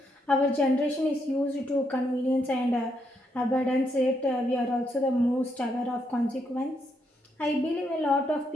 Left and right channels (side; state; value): both; normal; correlation 0.78